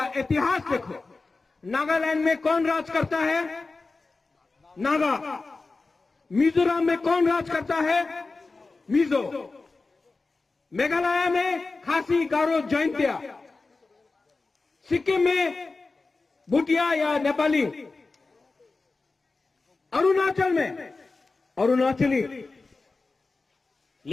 इतिहास देखो। नागालैंड में कौन राज करता है? नागा। मिजोरम में कौन राज करता है? मिजो। मेघालय में खासी, गारो, जैंतिया। सिक्किम में भूटिया या नेपाली। अरुणाचल में अरुणाचली।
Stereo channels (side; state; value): right; quieter; 3.7 dB